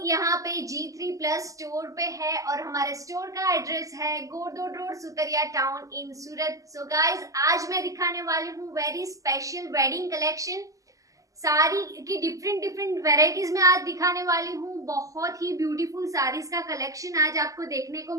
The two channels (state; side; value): late; left; 0.16 ms